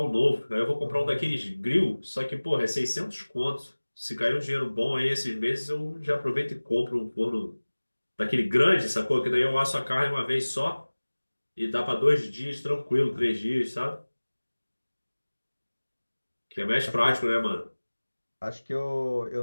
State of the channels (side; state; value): both; inverted; correlation -1.00